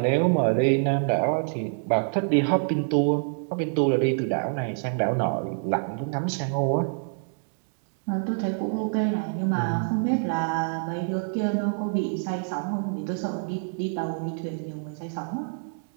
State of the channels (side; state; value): left; silent; digital silence